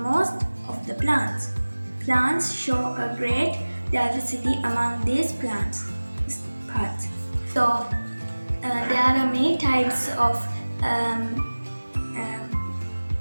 of the plants. Plants show a great diversity among these plants parts. So there are many types of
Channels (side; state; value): both; inverted; correlation -1.00